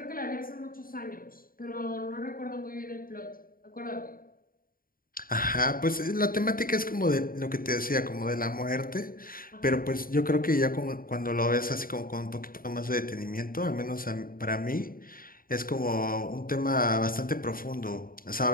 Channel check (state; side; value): late; right; 0.41 ms